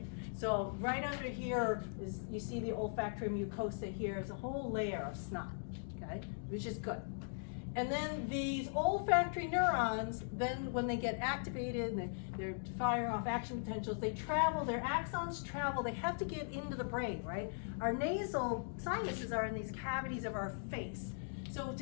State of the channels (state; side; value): silent; right; digital silence